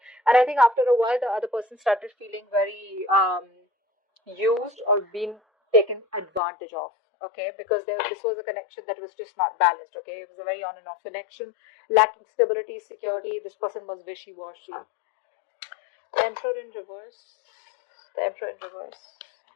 and I think after a while, the other person started feeling very used or being taken advantage of. Okay, because this was a connection that was just not balanced. Okay, it was a very on and off connection, lacking stability, security. This person was wishy-washy. The Emperor in reverse. The Emperor in reverse.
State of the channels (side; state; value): right; drops out; at 6.4 s